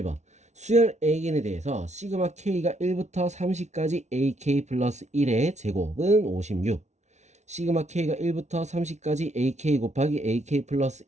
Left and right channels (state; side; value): late; left; 0.33 ms